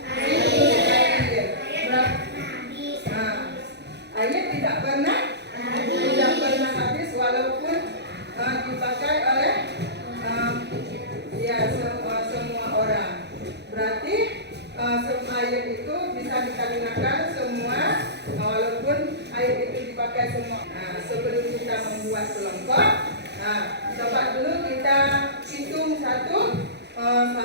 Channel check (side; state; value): left; late; 0.50 ms